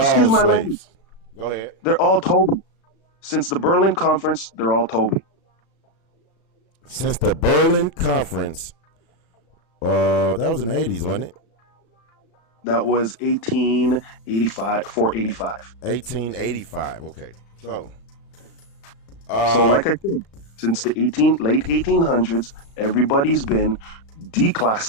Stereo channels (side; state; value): right; late; 36 ms